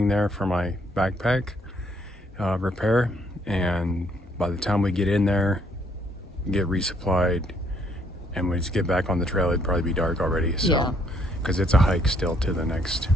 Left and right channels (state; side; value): normal; both; correlation 0.68